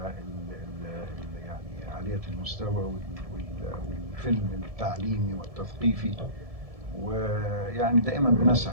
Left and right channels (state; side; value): late; left; 1.7 ms